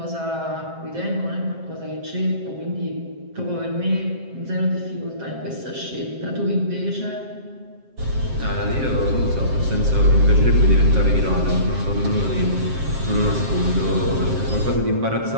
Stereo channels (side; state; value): left; late; 7.6 ms